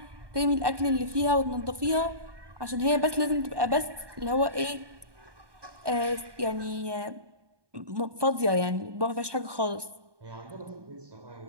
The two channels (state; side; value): late; left; 1.2 ms